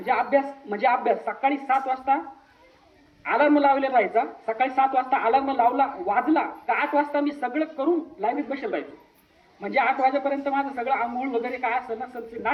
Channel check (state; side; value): identical; both; correlation 1.00